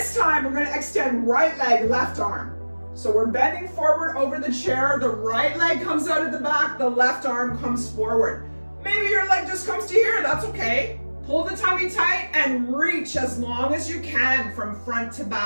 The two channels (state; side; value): inverted; both; correlation -1.00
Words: time we're going to extend right leg, left arm. So we're bending forward over the chair. The right leg comes out of the back. The left arm comes forward. Maybe your leg just comes to here. That's okay. Pull the tummy tight and reach as long as you can from front to